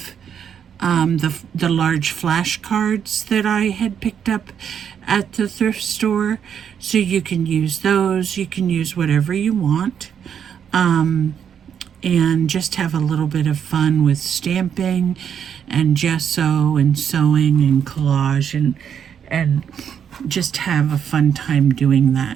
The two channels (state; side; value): quieter; left; 8.2 dB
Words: the large flashcards that I had picked up at the thrift store, so you can use those. You can use whatever you want, and just have a little bit of fun with stamping and gesso and sewing and collage, and just have a fun time doing that.